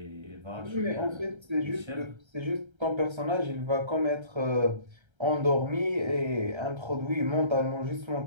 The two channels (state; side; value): late; left; 1.3 ms